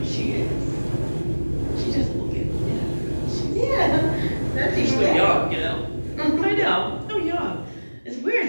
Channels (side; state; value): both; inverted; correlation -1.00